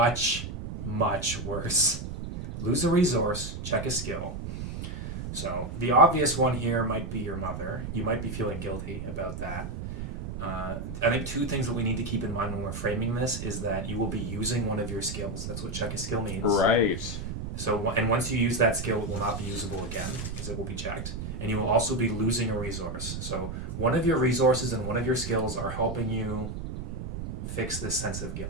much worse? Lose a resource, check a skill. So, the obvious one here might be your mother. You might be feeling guilty about that. I think two things that we need to keep in mind when we're framing this is that you will be using one of your skills. That's what check a skill means. Right. So, and once you use that skill, it will not be usable again because it will be checked. And you will also be losing a resource. So, one of your resources and one of your skills are helping you fix this sense of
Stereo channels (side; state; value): right; noise; rumble, 6 dB below the sound